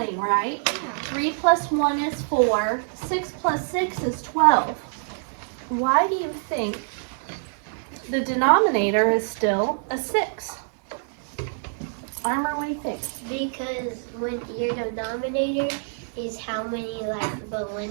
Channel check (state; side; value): silent; left; 62 dB below the other